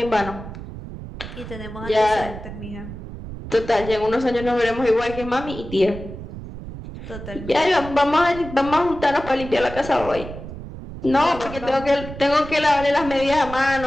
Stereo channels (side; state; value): right; noise; rumble, 11 dB below the sound